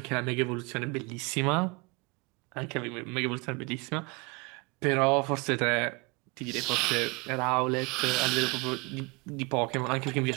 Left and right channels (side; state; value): left; quieter; 28.1 dB